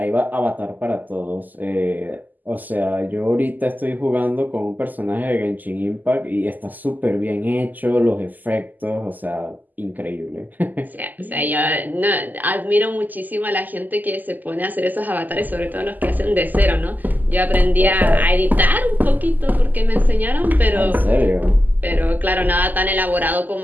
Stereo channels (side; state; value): left; late; 0.084 ms